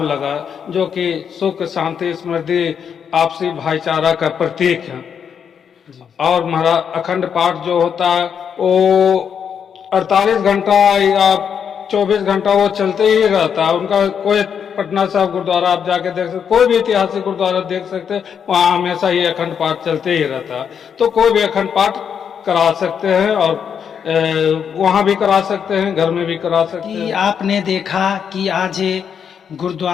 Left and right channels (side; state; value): right; quieter; 7.5 dB